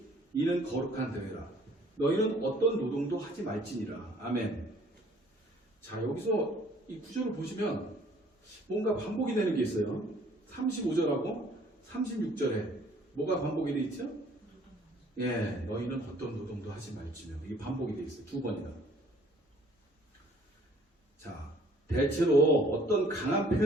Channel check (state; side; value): normal; both; correlation 0.57